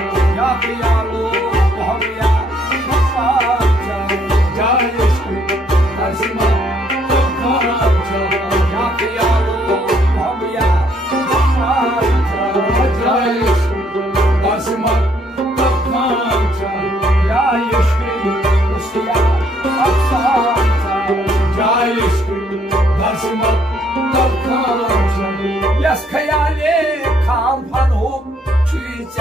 Ya kıyalo muhammiya muhammiya Jayeshri Dasma Takancha Ya kıyalo muhammiya muhammiya Jayeshri Dasma Takancha Jayeshri Kusya Apsanta Jayeshri Dasma Takancha Yas khayale kampan hum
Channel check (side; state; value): both; normal; correlation 0.67